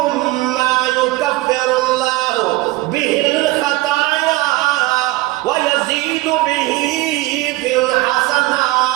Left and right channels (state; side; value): quieter; left; 19.5 dB